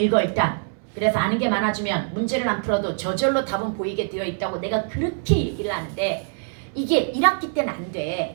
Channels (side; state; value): left; silent; 63 dB below the other